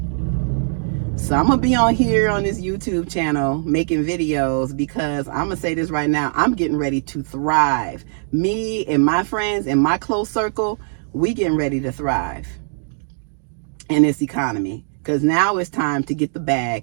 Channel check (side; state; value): left; silent; digital silence